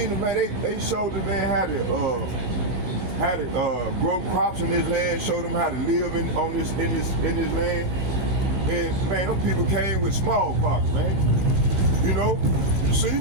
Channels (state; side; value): late; left; 16 ms